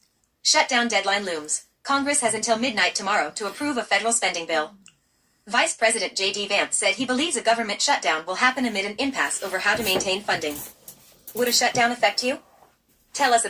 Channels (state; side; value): identical; both; correlation 1.00